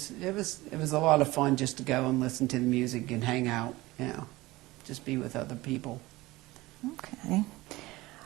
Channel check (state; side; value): quieter; left; 19.6 dB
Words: a lot of fun just to go and listen to the music and hang out, you know, just be with other people. Okay.